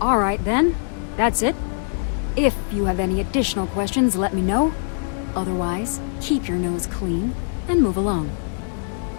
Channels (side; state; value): right; silent; digital silence